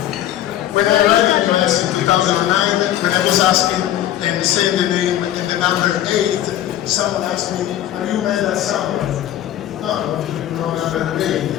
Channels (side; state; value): right; quieter; 12.4 dB